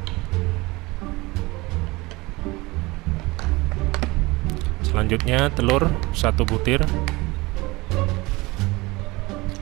Selanjutnya telur 1 butir.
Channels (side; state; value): left; quieter; 22.5 dB